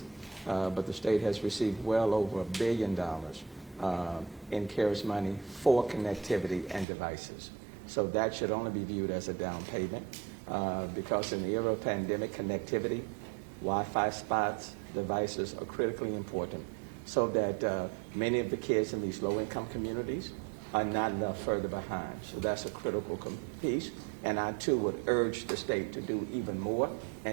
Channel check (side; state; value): left; drops out; at 6.9 s